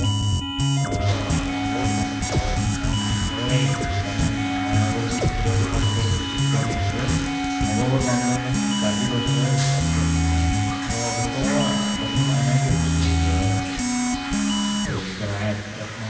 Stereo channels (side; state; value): both; identical; correlation 1.00